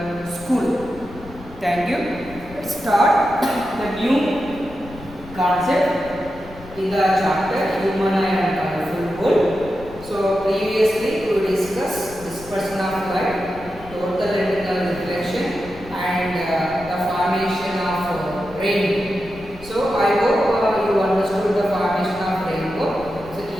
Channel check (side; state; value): left; noise; rumble, 17 dB below the sound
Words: school. Thank you. Let's start the new concept in the chapter Human Eye and Colorful World. So previously we discussed dispersion of light, total retinal reflection, and the formation of rainbow. So I hope you understood the formation of rainbow. So